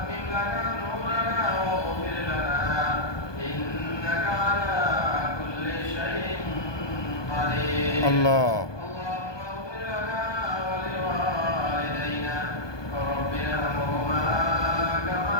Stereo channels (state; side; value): late; right; 1.2 ms